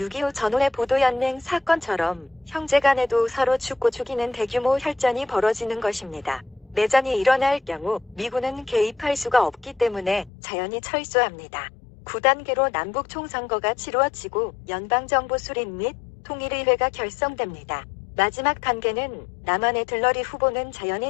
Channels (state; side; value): drops out; right; at 10.3 s